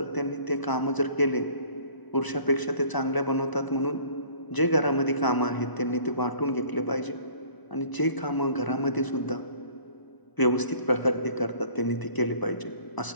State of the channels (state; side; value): late; right; 1.0 ms